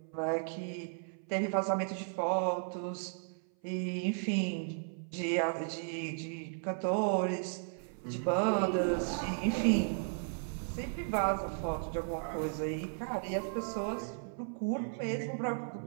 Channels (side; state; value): left; silent; 54 dB below the other